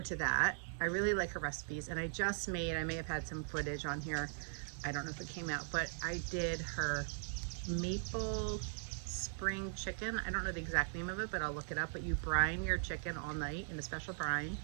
to that. I really like her recipes, and I may have had some footage on here. I don't know if it came out, but I did her maple spring chicken. I don't know the exact name of it, but I'll look it up. But you brine your chicken all night in a special brine,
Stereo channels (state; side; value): silent; left; digital silence